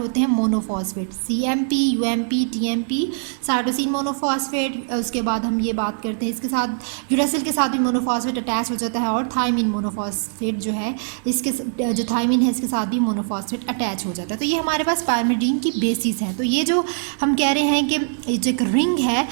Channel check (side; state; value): left; silent; digital silence